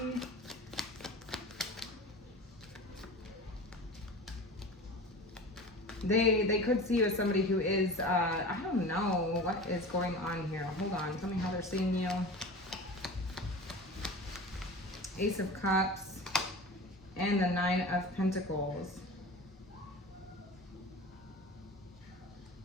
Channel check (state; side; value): normal; both; correlation 0.34